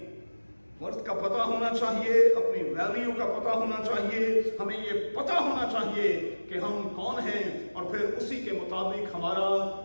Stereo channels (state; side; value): inverted; both; correlation -1.00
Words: वर्थ का पता होना चाहिए, अपनी वैल्यू का पता होना चाहिए। हमें ये पता होना चाहिए कि हम कौन हैं और फिर उसी के मुताबिक हमारा